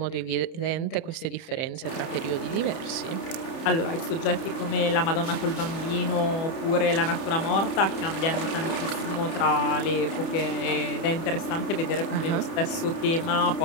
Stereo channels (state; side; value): late; right; 31 ms